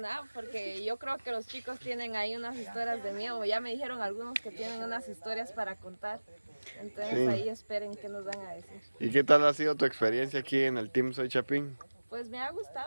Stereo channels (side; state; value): both; inverted; correlation -1.00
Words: porque yo creo que los chicos tienen ahí unas historias de miedo. Ya me dijeron algunos que tienen unas historias para contar. Entonces Sí. ahí esperen qué nos van a decir. ¿Y qué tal ha sido tu experiencia aquí en el Team Soy Chapín? Pues me ha